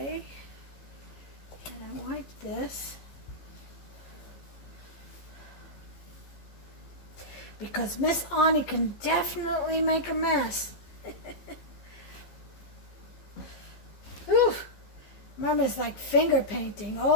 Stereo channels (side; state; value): right; late; 15 ms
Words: And I wipe this. Because Miss Ani can definitely make a mess. Whew. Mama's like finger painting.